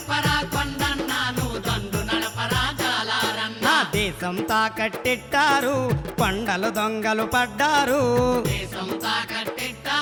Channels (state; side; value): identical; both; correlation 1.00